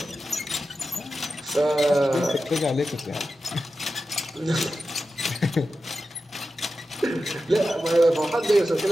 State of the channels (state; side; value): normal; both; correlation 0.92